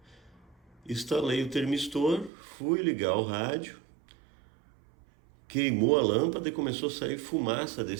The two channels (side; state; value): left; drops out; at 2.3 s